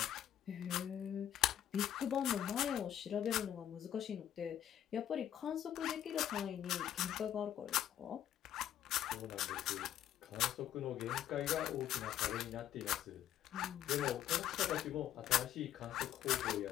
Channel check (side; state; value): right; quieter; 10.9 dB